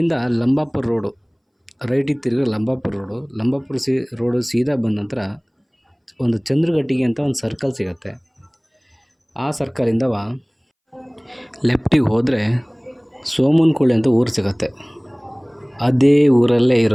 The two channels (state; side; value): identical; both; correlation 1.00